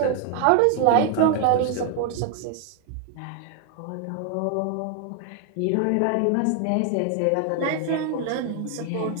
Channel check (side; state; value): both; different; correlation 0.00